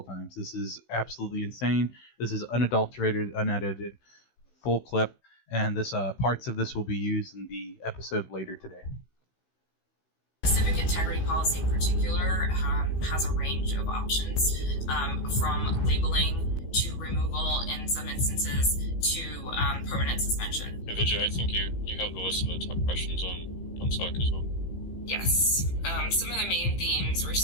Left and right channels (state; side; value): late; right; 16 ms